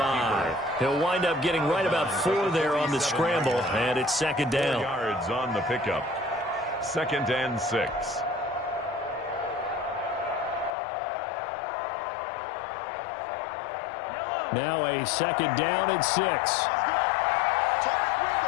He'll wind up getting right about 4 there on the scramble, and it's 2nd down. 4 yards on the pickup. 2nd and 6. Now a 2nd down and 6. Let's go. Tight as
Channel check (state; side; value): drops out; right; at 10.7 s